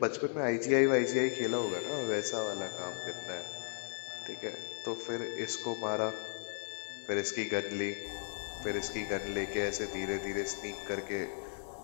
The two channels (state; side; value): silent; right; 54 dB below the other